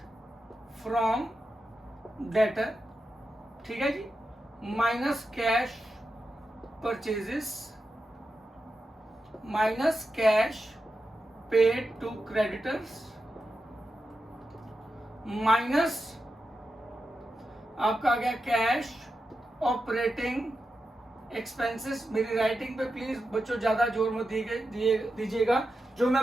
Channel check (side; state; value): both; normal; correlation 0.89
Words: फ्रॉम डेटर, ठीक है जी, minus cash purchases minus cash paid to creditors minus आपका आ गया कैश ऑपरेटिंग एक्सपेंसेस। मेरी राइटिंग पे प्लीज बच्चों ज्यादा जोर मत दीजिएगा, जो